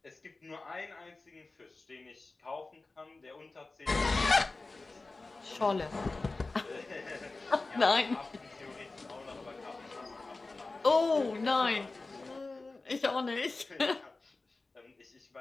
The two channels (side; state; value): right; quieter; 3.5 dB